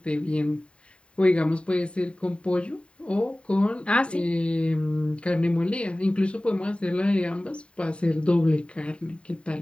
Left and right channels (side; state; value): right; late; 0.057 ms